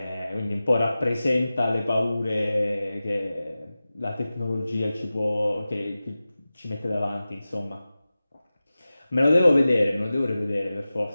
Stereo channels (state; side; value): inverted; both; correlation -0.96